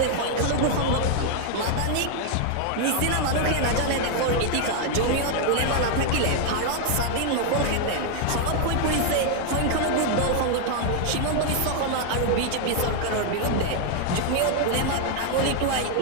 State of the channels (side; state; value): both; different; correlation 0.00